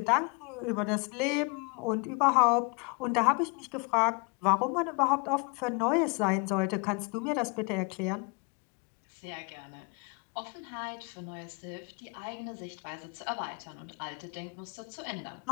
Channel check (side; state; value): right; quieter; 31.4 dB